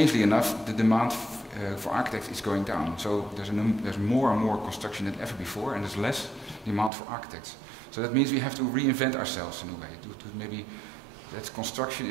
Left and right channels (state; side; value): drops out; left; at 6.9 s